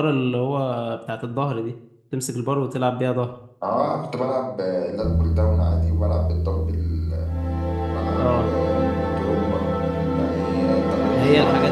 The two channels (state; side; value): identical; both; correlation 1.00